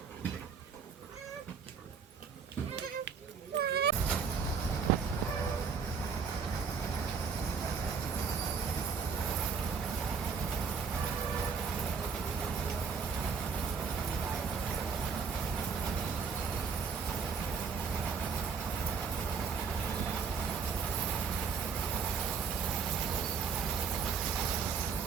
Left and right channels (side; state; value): left; quieter; 5.7 dB